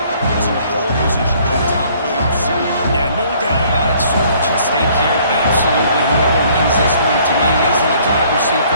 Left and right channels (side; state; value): both; inverted; correlation -0.60